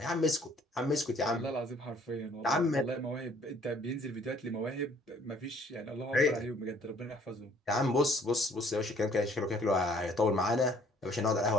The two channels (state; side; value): normal; both; correlation 0.59